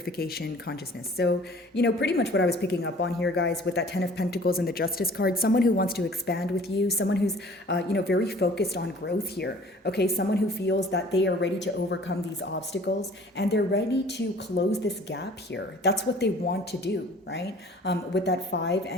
consciousness. So, pretty much what I was picking up on here, guys, with that 10 of Pentacles and the Justice card, someone who wants to expand with you, someone who's, very focused on growth here. Okay, someone who feels that they are ready to overcome these obstacles and they're ready to close this gap here. That's what they want to do, right? With that 5,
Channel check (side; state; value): both; normal; correlation 0.50